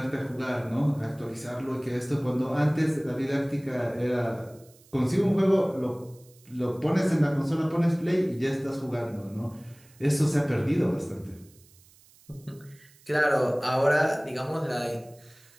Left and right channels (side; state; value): right; noise; hiss, 27 dB below the sound